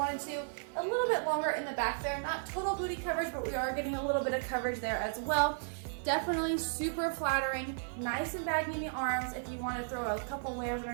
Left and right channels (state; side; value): silent; left; 55 dB below the other